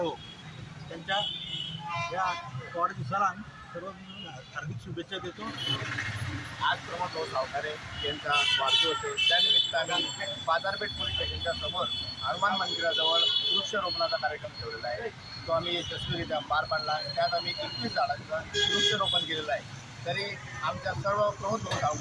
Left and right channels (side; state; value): both; identical; correlation 1.00